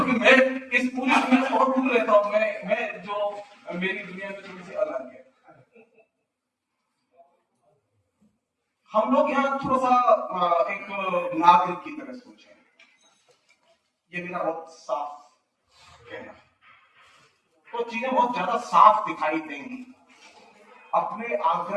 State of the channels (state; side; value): identical; both; correlation 1.00